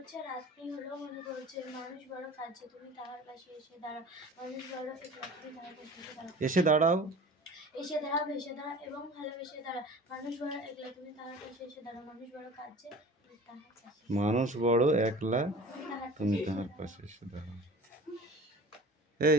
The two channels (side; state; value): both; normal; correlation 0.40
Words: রাত্রি হলেও মনে পড়ছে। মানুষ বড় কাছে, তুমি তাহার পাশে এসে দাঁড়াও। মানুষ বড় একলা, তুমি তাহার পাশে এসে দাঁড়াও। এসে দাঁড়াও। ভেসে দাঁড়াও এবং ভালোবেসে দাঁড়াও। মানুষ বড় একলা, তুমি তাহার পাশে এসে দাঁড়াও। মানুষ বড় কাছে, তুমি তাহার পাশে মানুষ বড় একলা, তুমি তাহার পাশে এসে দাঁড়াও। এই